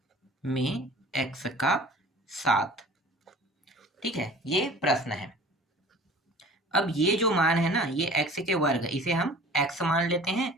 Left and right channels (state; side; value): normal; both; correlation 0.45